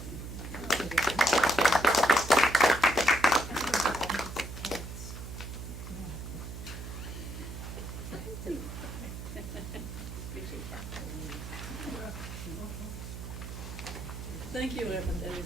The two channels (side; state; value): right; noise; hum, 8 dB below the sound